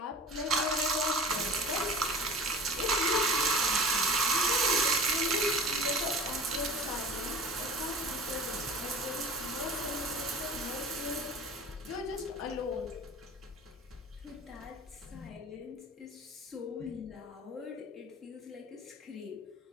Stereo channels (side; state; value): both; normal; correlation 0.39